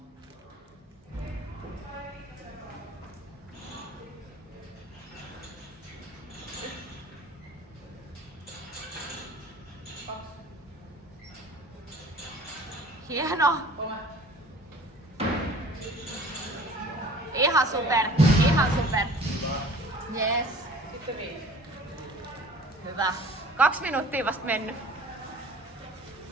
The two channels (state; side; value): normal; both; correlation 0.47